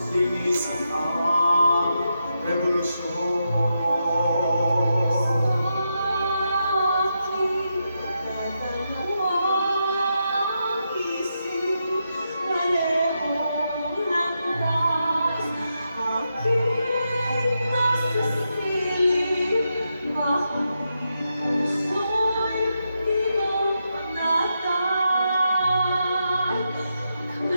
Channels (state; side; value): inverted; both; correlation -0.84